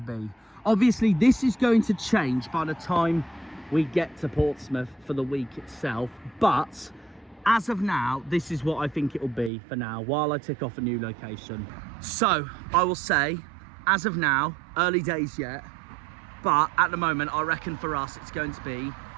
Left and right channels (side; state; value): left; drops out; at 9.5 s